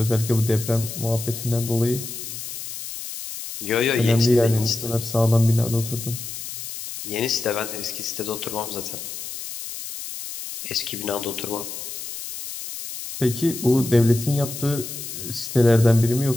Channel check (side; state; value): left; noise; hiss, 9 dB below the sound